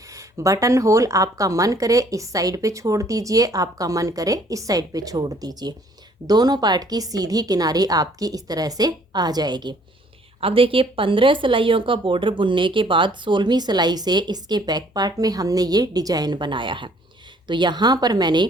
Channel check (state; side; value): normal; both; correlation 0.60